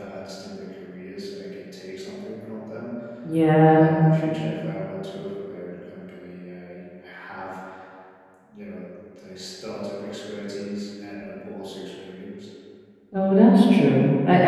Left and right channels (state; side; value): identical; both; correlation 1.00